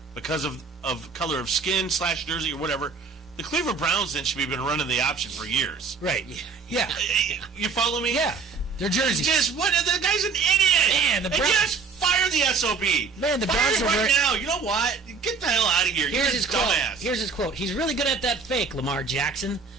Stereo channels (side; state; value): left; quieter; 5.0 dB